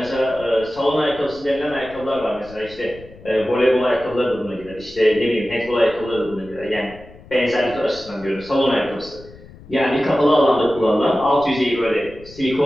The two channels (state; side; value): noise; left; rumble, 20 dB below the sound